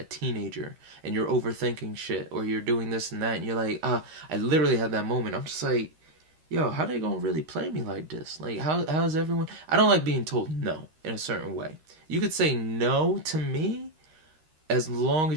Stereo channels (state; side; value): late; left; 13 ms